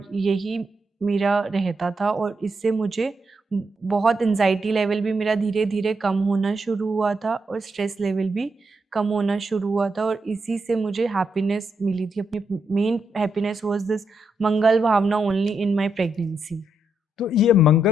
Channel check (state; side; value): normal; both; correlation 0.81